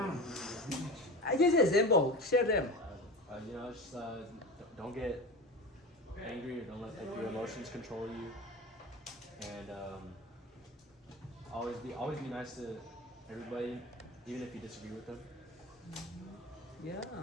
Just an example. Share them. Just don't get angry, or don't let your emotions control you, and always be nice to everybody, even if you disagree with them. Yeah.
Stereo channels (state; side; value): normal; both; correlation 0.30